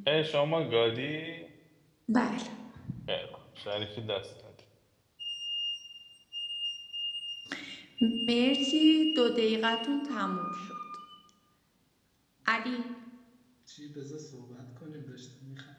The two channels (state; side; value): identical; both; correlation 1.00